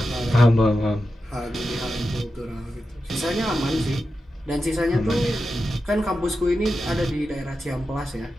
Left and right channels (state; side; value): normal; both; correlation 0.90